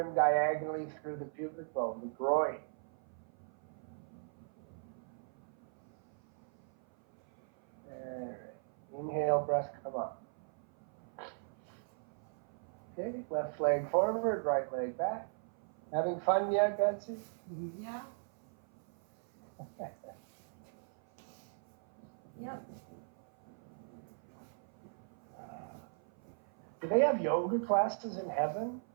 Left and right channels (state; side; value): silent; left; 52 dB below the other